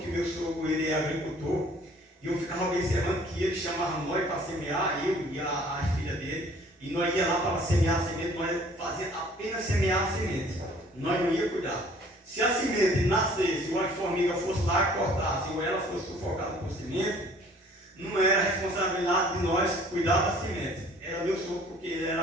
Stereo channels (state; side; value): normal; both; correlation 0.54